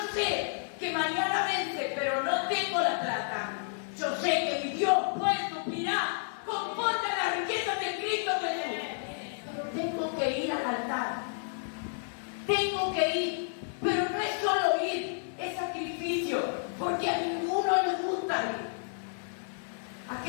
sé que mañana vence, pero no tengo la plata, yo sé que mi Dios puede suplirá conforme a las riquezas de Cristo Jesús. Pero tengo que ir al altar. Tengo que ir. Pero no es solo ir, es sacrificio, porque a ninguno le gusta ir.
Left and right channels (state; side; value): silent; right; 56 dB below the other